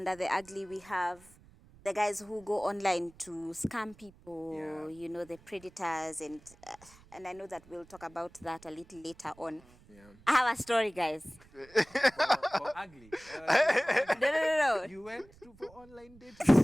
the ugly, we have the guys who go online to scam people, the predators, and I know that we'll talk about that a little later on. Yeah. I have a story, guys. For ugly. No. You went for online dating.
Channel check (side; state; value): right; noise; rumble, 25 dB below the sound